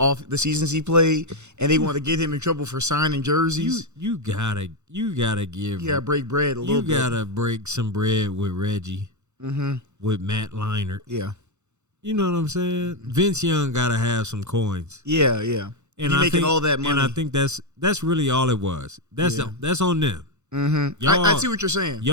the seasons he played, and they want to get him in trouble for signing jerseys. You gotta give. You gotta break bread a little bit. You gotta break some bread with Reggie, with Matt Leinart. Yeah, you know what I'm saying. Vince Young gotta have some coins. Yeah. And you're making all that money, and I think that's really all it was. That's on them. Mm-hmm. I see what you're saying.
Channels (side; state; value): left; late; 0.83 ms